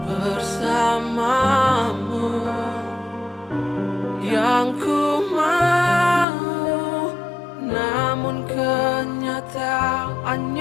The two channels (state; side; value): drops out; right; at 6.2 s